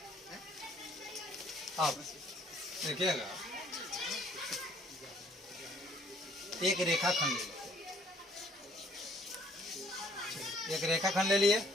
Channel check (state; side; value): normal; both; correlation 0.61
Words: अब देखिएगा, एक रेखाखंड ले लिए, एक रेखाखंड ले लिए।